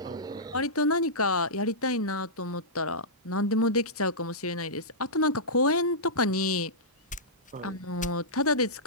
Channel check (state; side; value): normal; both; correlation -0.14